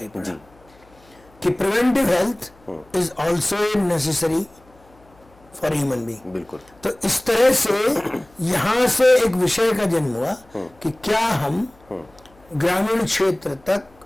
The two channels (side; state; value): left; noise; hum, 29 dB below the sound